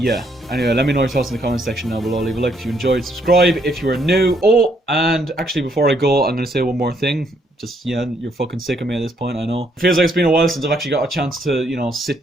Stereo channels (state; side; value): normal; both; correlation 0.71